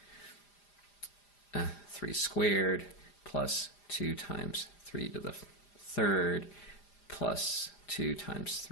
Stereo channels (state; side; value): late; right; 5.0 ms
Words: 3 squared plus 2 times 3 to the 3rd plus 2 times